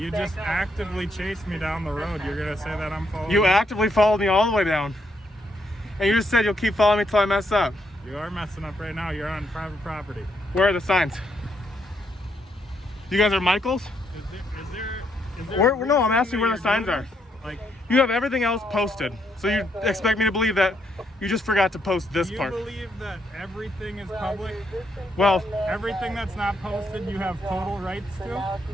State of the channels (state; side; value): normal; both; correlation 0.76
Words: just actively chased me down the road. You're going to say that I'm following You actively followed me all the way down. And you just said you'll keep following me till I mess up. You are messing up right now. You're on private property. Where are the signs? You guys are Michaels? Is there No, I'm asking where the signs are. Like, You have everything else posted. So you expect me to believe that you just forgot to post this do you part. believe that everything is public? Well, Everything that's not posted, you have total rights to?